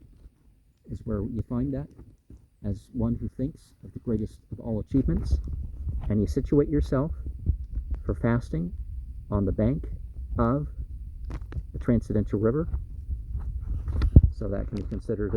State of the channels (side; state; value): both; identical; correlation 1.00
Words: is where you find that as one who thinks of the greatest of all achievements, and you situate yourself for fasting on the bank of the transcendental river. So that can be considered